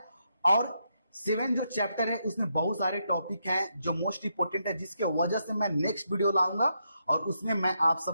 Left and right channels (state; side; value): inverted; both; correlation -0.81